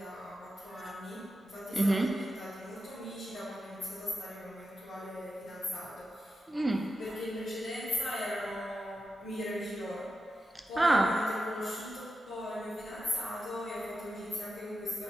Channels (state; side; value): normal; both; correlation 0.89